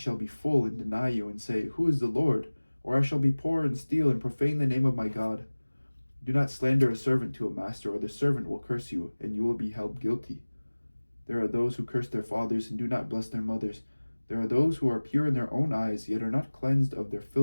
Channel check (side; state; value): both; inverted; correlation -1.00